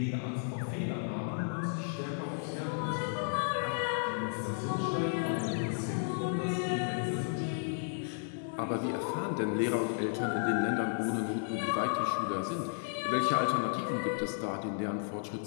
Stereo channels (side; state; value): right; silent; 55 dB below the other